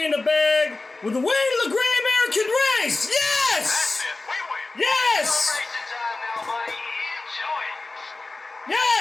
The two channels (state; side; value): quieter; right; 3.3 dB